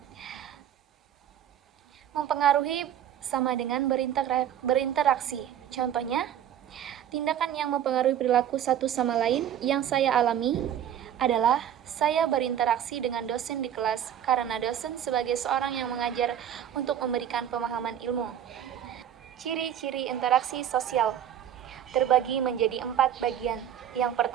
Mempengaruhi sama dengan berinteraksi. Contohnya, tindakan yang mempengaruhi perilaku satu sama lain yang saya alami adalah saya berinteraksi dengan dosen di kelas karena dosen sebagai seorang yang mengajar untuk memberikan pemahaman ilmu. Ciri-ciri interaksi sosial terbagi menjadi 4 bagian. Yang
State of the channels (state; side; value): quieter; left; 10.2 dB